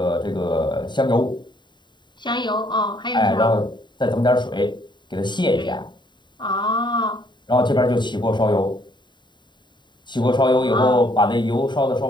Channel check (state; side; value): late; right; 0.22 ms